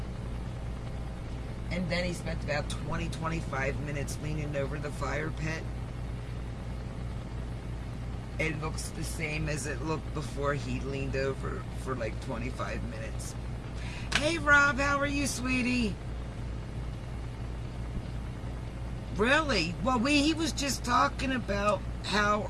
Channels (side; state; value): both; identical; correlation 1.00